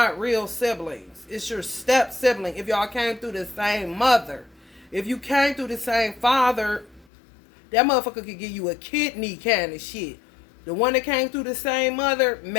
real siblings. It's your step sibling if y'all came through the same mother. If you came through the same father, that motherfucker could give you a kidney kind of shit. The one that came through the same mother,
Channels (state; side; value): drops out; right; at 7.1 s